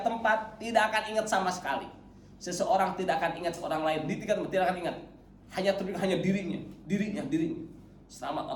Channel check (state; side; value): identical; both; correlation 1.00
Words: tempat tidak akan ingat sama sekali. Seseorang tidak akan ingat seorang lain. Di 3 tempat tidak akan ingat. Hanya dirinya. Selamat